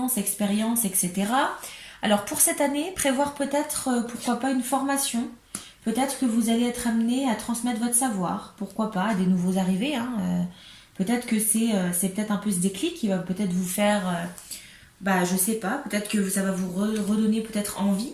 expérience, etc. Alors pour cette année, prévoir peut-être, pourquoi pas, une formation. Peut-être que vous allez être amené à transmettre votre savoir. Pourquoi pas, à des nouveaux arrivés, hein. Peut-être que c'est peut-être un peu ce déclic qui va peut-être vous faire, je sais pas, peut-être que ça va vous redonner peut-être envie,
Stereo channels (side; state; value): both; identical; correlation 1.00